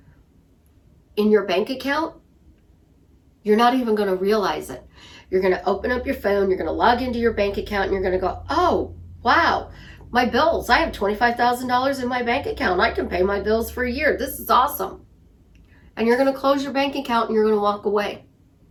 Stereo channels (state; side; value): identical; both; correlation 1.00